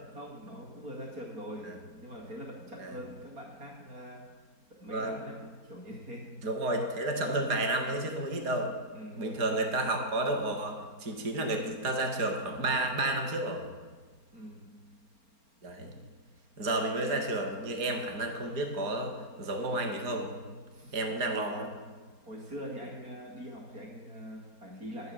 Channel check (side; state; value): left; late; 4.3 ms